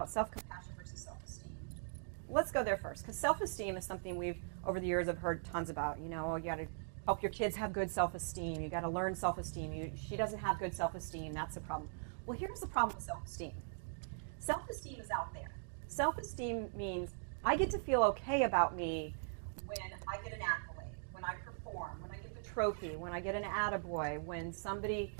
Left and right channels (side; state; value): left; silent; digital silence